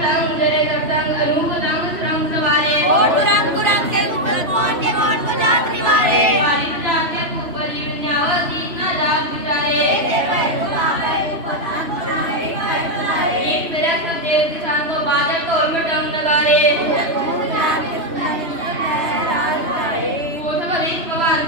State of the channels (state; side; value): late; left; 3.0 ms